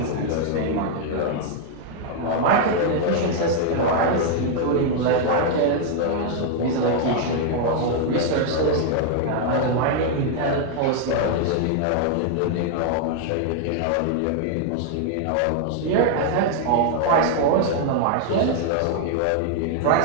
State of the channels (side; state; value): both; different; correlation 0.00